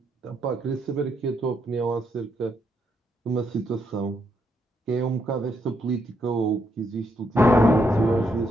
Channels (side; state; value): both; normal; correlation 0.77